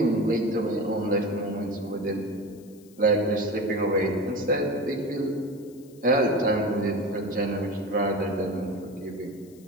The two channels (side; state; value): left; noise; hiss, 27 dB below the sound